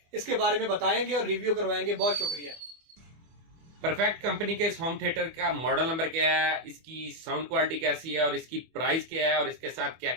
इसके बारे में बताएंगे और रिव्यू करवाएंगे। बहुत शुक्रिया। परफेक्ट कंपनी के इस होम थिएटर का मॉडल नंबर क्या है, इसकी साउंड क्वालिटी कैसी है और इसकी प्राइस क्या है और इसके साथ क्या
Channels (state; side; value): late; left; 24 ms